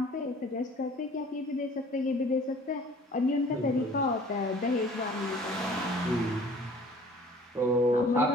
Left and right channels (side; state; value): both; normal; correlation 0.50